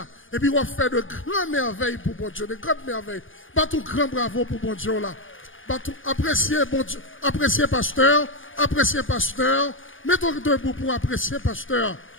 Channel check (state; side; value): late; right; 0.58 ms